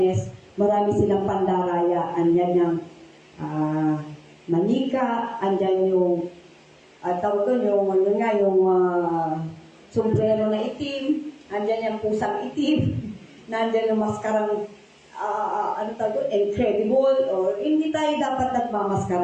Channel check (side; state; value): both; identical; correlation 1.00